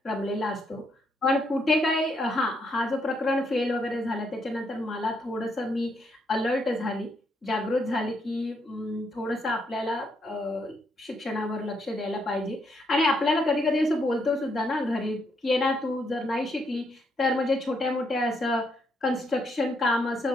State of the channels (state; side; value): normal; both; correlation 0.76